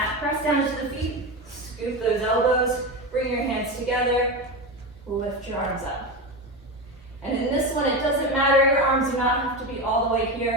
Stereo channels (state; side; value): normal; both; correlation 0.19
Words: press down into the feet, scoop those elbows, bring your hands together, lift your arms up. And in this one, it doesn't matter, your arms do not have to be all the way